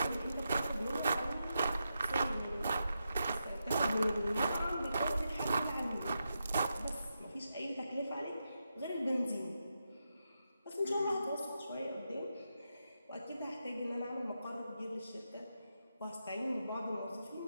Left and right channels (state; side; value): inverted; both; correlation -0.86